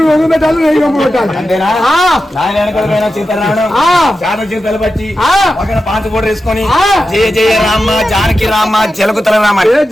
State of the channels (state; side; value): normal; both; correlation 0.91